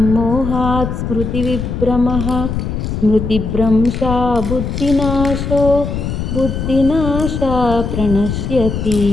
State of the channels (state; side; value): noise; left; rumble, 4 dB below the sound